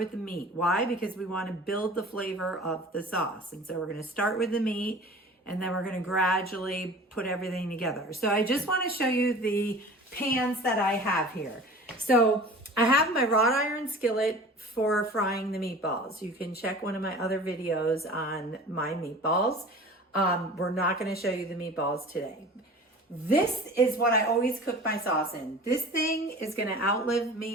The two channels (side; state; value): both; normal; correlation 0.41